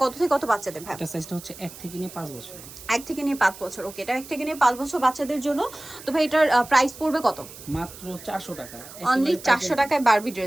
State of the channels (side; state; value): right; noise; hiss, 16 dB below the sound